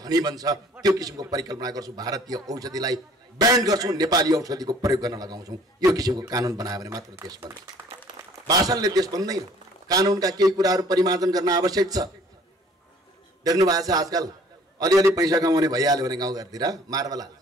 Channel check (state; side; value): normal; both; correlation 0.55